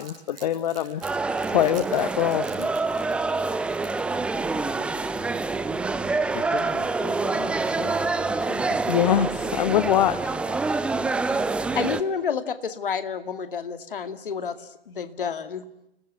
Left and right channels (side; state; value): both; normal; correlation 0.51